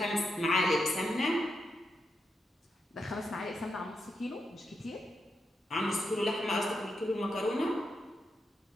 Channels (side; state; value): both; normal; correlation 0.84